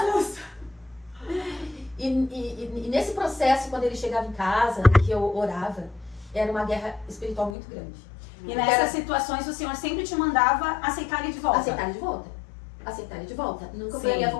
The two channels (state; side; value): drops out; right; at 7.5 s